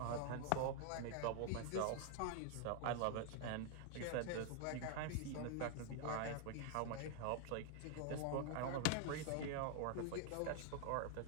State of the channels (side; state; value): both; different; correlation 0.00